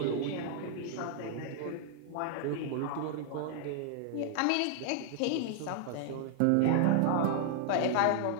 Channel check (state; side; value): different; both; correlation 0.00